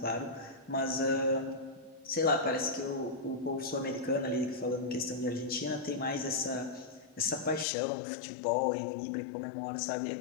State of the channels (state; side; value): drops out; right; at 7.7 s